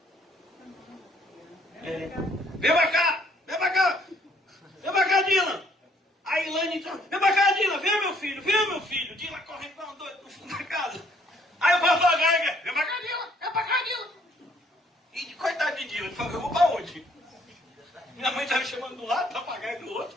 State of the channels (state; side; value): normal; both; correlation 0.65